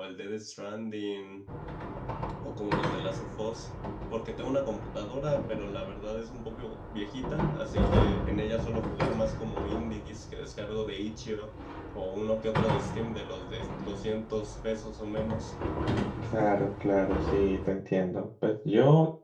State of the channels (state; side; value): identical; both; correlation 1.00